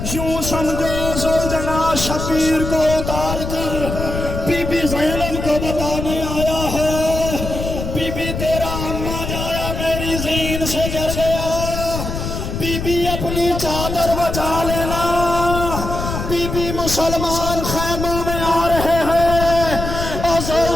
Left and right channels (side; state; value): left; noise; rumble, 5 dB below the sound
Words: یوں سمجھو ذوالجلال شبیر کو اتار کر بی بی زینب کو بتانے آیا ہے، بی بی تیرا اماں جایا میری زین سے گر گیا، بی بی اپنی چادر بچا لینا، بی بی مسلمان خیموں میں آ رہے ہیں، اور